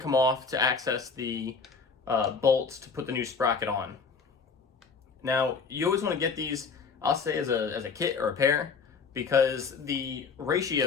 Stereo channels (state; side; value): quieter; right; 5.2 dB